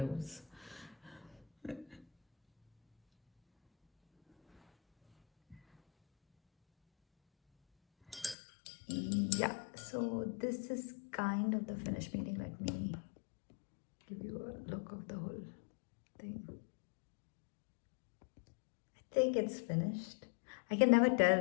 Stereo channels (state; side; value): drops out; right; at 8.3 s